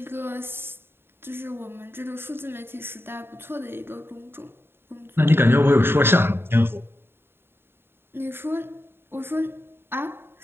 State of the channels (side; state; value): left; late; 0.11 ms